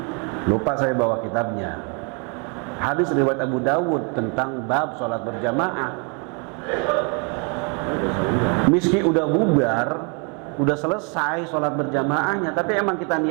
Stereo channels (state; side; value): quieter; left; 35.3 dB